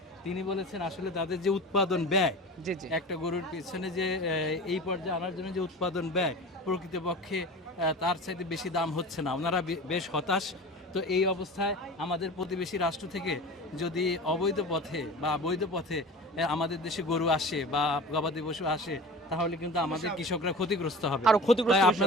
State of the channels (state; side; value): normal; both; correlation 0.35